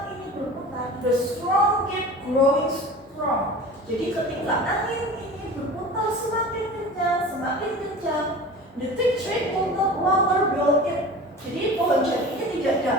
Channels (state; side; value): normal; both; correlation 0.37